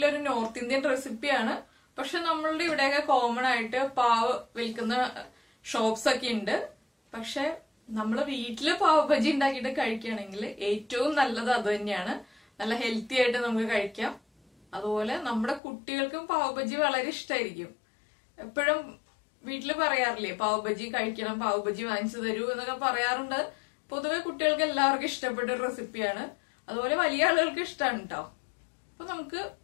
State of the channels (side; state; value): right; drops out; at 15.6 s